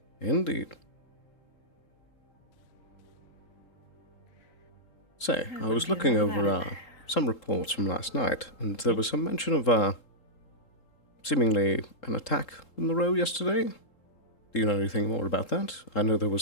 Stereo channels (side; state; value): right; late; 3.7 ms